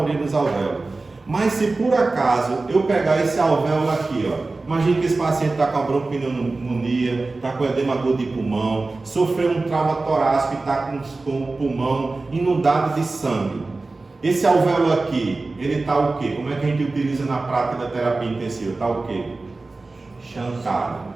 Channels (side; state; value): left; quieter; 3.4 dB